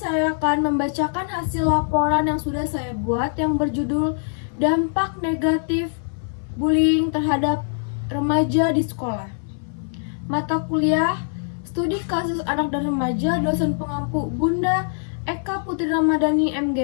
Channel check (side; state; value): right; silent; 58 dB below the other